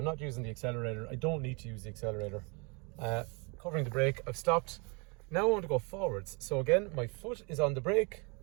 not using the accelerator. I don't need to use the accelerator. Covering the brake, I've stopped. Now I want to go forwards. So again, my foot is on the brake.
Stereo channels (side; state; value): left; quieter; 31.6 dB